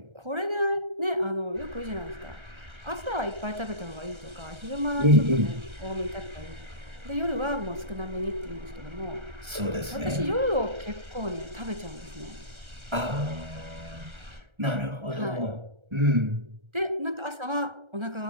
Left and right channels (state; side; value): late; left; 1.3 ms